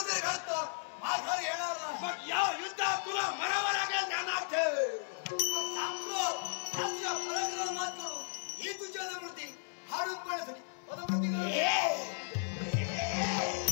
घडतं माघार येणार नाही. मग या युद्धात तुला मरावं लागेल ध्यानात ठेव. सांगतो तुझ्या पराक्रमात करू ही तुझ्या अनुभूती हाडून पडण्यासाठी पदमृती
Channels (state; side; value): silent; right; 54 dB below the other